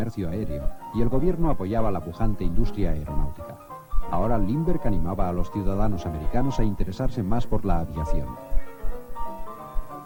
Aéreo y el gobierno apoyaba la pujante industria aeronáutica. Ahora Lindbergh animaba a los ciudadanos americanos a interesarse más por la aviación.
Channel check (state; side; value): identical; both; correlation 1.00